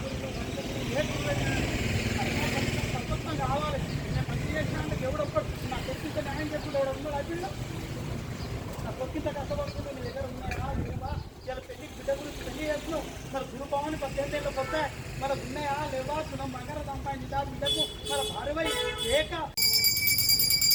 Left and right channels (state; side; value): identical; both; correlation 1.00